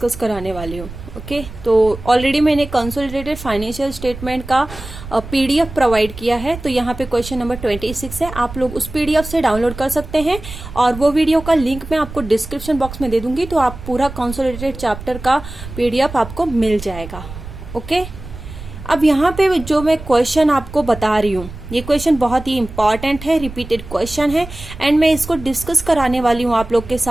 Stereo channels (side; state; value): right; noise; rumble, 13 dB below the sound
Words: कराने वाली हूँ। ओके, तो ऑलरेडी मैंने कंसोलिडेटेड फाइनेंशियल स्टेटमेंट का पीडीएफ प्रोवाइड किया है, तो यहाँ पे क्वेश्चन नंबर 26 है। आप लोग उस पीडीएफ से डाउनलोड कर सकते हैं और वो वीडियो का लिंक मैं आपको डिस्क्रिप्शन बॉक्स में दे दूंगी, तो आप पूरा कंसोलिडेटेड चैप्टर का पीडीएफ आपको मिल जाएगा। ओके, अब यहाँ पे जो मैं क्वेश्चन आपको बता रही हूँ, ये क्वेश्चन बहुत ही इंपॉर्टेंट है, रिपीटेड क्वेश्चन है एंड मैं इसको डिस्कस कराने वाली हूँ आप लोग के